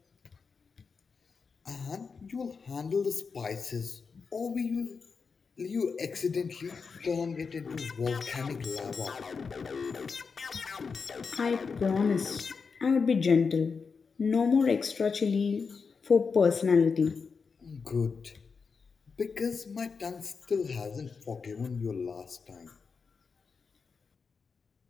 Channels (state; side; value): quieter; right; 5.2 dB